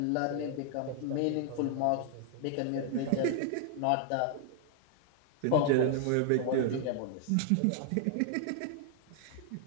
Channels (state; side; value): different; both; correlation 0.00